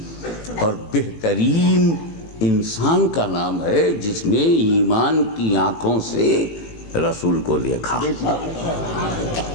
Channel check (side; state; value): right; late; 18 ms